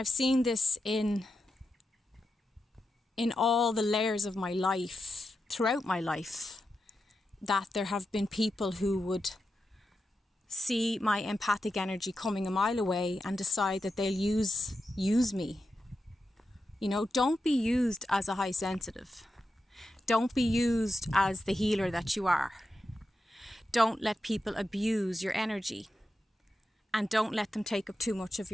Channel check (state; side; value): normal; both; correlation 0.88